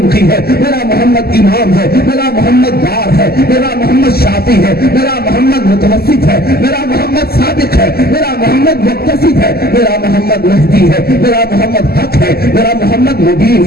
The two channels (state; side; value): late; right; 0.45 ms